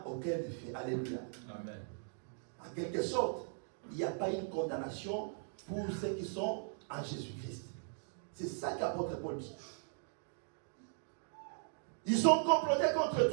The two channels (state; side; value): silent; left; digital silence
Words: aucun effet. Alléluia. Amen. En quelque sorte, il n'y a pas une condamnation pour ceux qui sont en Jésus-Christ. C'est ça qu'apôtre Paul dit. Ils sont complotés contre